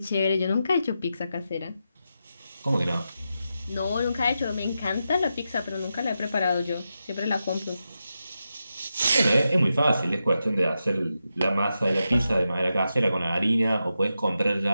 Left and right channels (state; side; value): inverted; both; correlation -0.88